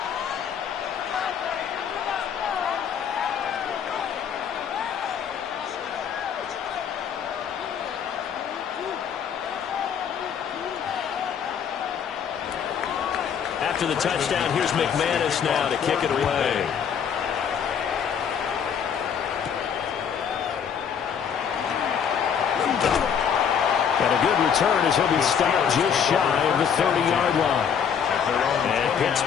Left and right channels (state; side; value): quieter; right; 7.6 dB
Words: After the touchdown, here's McManus now to kick it away. And a good return as he'll be stopped just shy of the 30-yard line. And